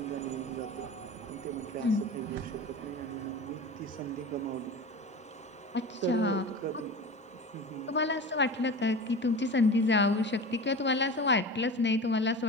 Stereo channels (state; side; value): normal; both; correlation 0.32